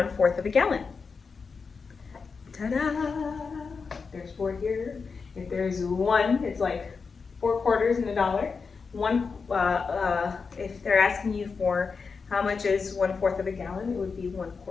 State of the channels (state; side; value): quieter; right; 5.1 dB